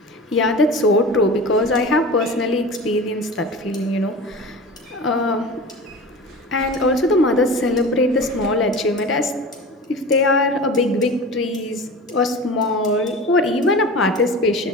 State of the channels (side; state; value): both; normal; correlation 0.34